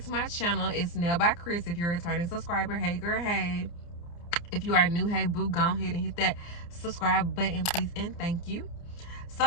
to my channel. It's Nail by Chris. If you're a returning subscriber, hey girl, hey. If you are new, hey boo, go ahead and hit that subscribe button, please, and thank you. So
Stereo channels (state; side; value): late; right; 29 ms